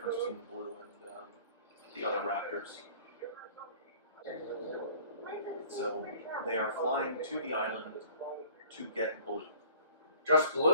between Blue and the other raptors. So they are flying to the island to get Blue. Just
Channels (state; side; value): inverted; both; correlation -0.51